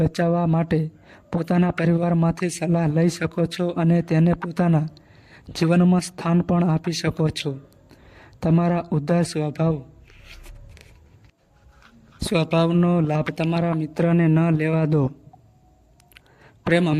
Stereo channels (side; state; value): both; identical; correlation 1.00